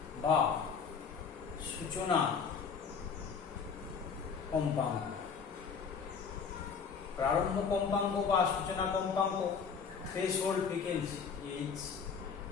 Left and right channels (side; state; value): right; quieter; 6.1 dB